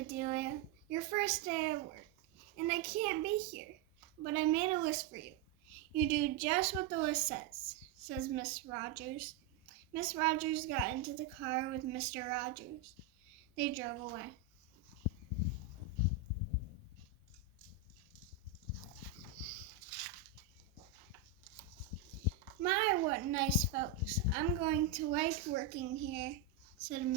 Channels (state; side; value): quieter; left; 6.3 dB